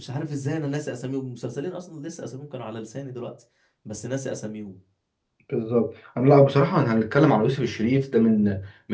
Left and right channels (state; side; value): identical; both; correlation 1.00